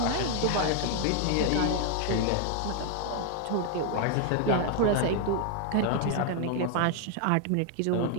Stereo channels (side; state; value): both; different; correlation 0.00